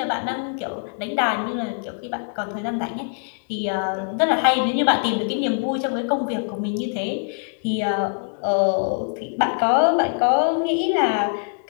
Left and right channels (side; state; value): right; silent; digital silence